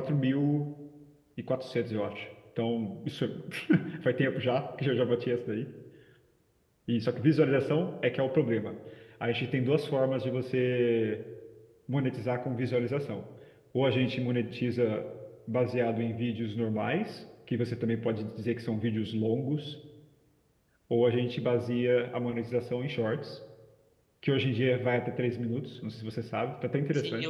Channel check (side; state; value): both; identical; correlation 1.00